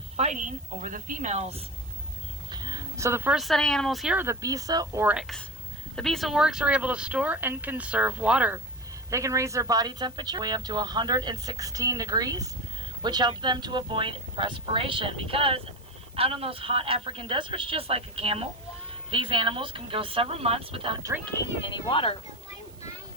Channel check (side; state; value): right; noise; hiss, 26 dB below the sound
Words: fighting over the females. So the first set of animals here are the Bisa oryx. The Bisa oryx are able to store and conserve water. They can raise their body temperature way up to 116 degrees, which helps them to avoid perspiration, because out in those hot African deserts, just like a camel, these animals can go several months without drinking any water.